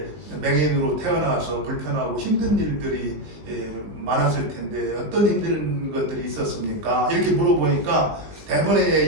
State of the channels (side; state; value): left; late; 19 ms